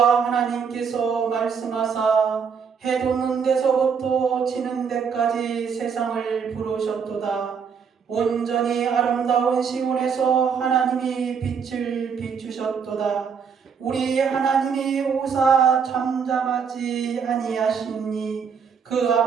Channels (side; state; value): left; quieter; 6.5 dB